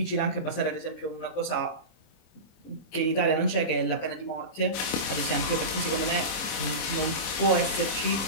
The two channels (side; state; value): right; late; 26 ms